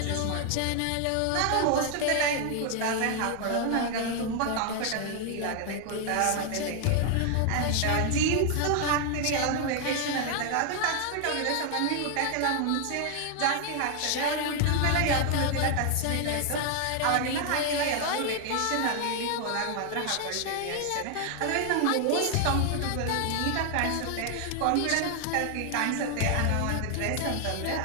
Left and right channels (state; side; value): different; both; correlation 0.00